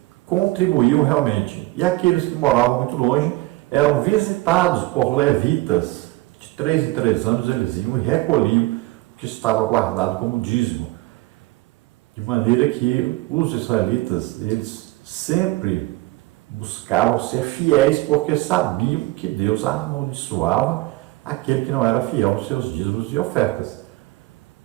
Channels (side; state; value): left; quieter; 20.1 dB